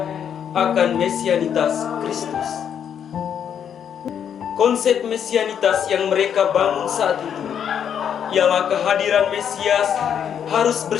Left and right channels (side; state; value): right; quieter; 8.5 dB